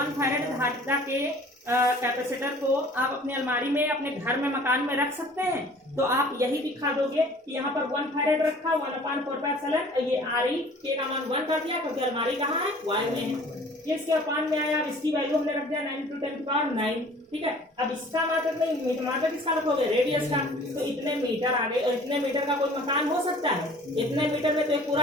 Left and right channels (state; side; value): normal; both; correlation 0.50